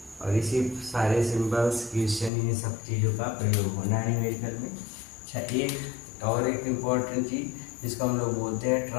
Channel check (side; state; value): right; drops out; at 2.3 s